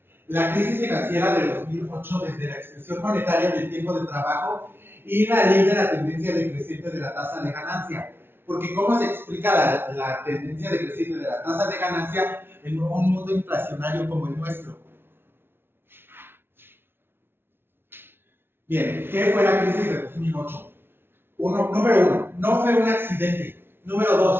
La crisis financiera de 2008, desde la expresión monetaria del tiempo de trabajo y la ley de la tendencia decreciente de la tasa de ganancia. Porque ¿cómo se explica la tendencia decreciente de la tasa de ganancia en un mundo inflacionario como el nuestro? Bien, ¿qué fue la crisis de 2008? Número uno, no fue un accidente. Número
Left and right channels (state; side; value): late; left; 0.11 ms